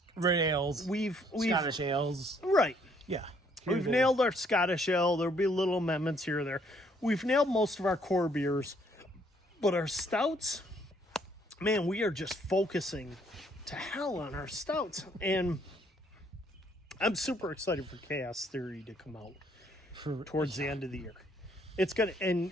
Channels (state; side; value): normal; both; correlation 0.66